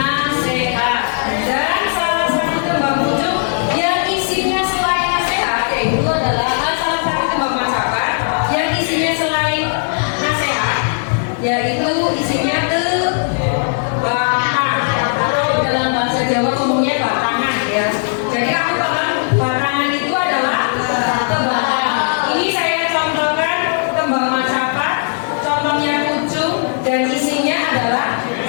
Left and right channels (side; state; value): right; silent; 59 dB below the other